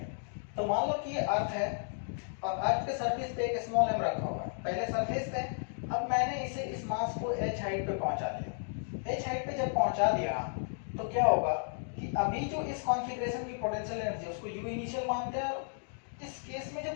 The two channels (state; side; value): silent; right; digital silence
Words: तो मान लो कि ये अर्थ है और अर्थ के सरफेस पे एक स्मॉल m रखा हुआ है, पहले सरफेस पे। अब मैंने इसे इस मास को h हाइट पे पहुंचा दिया। h हाइट पे जब पहुंचा दिया तो क्या होगा कि अभी जो इस कॉन्फ़िगरेशन की पोटेंशियल एनर्जी उसको u इनिशियल मानते हैं, और इस केस में जो